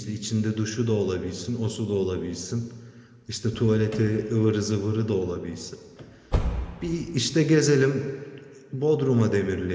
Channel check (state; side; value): identical; both; correlation 1.00